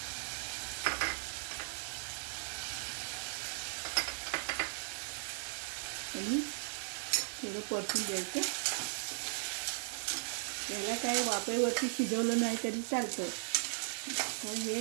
आणि थोडं परतून द्यायचं। याला काय वाफेवरती शिजवलं नाही तरी चालतं, तर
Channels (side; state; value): left; silent; 53 dB below the other